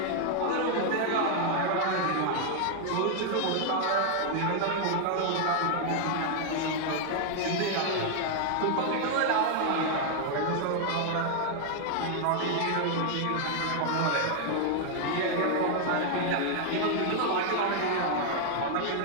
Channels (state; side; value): different; both; correlation 0.00